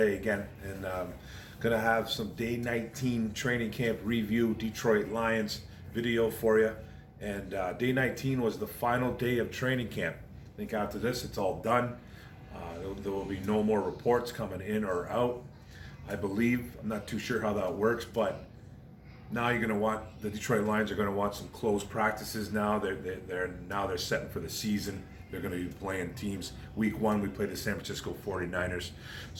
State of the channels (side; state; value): both; identical; correlation 1.00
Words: again, and gonna have some day 19 training camp review, Detroit Lions video for you. And day 19 was the final day of training camp. I think after this, it's all done. There will be no more reports coming in or out, I believe. I'm not too sure how that works, but now the Detroit Lions are going to want some close practices now. They're setting for the season. They're going to be playing teams. Week 1, we played the San Francisco 49ers.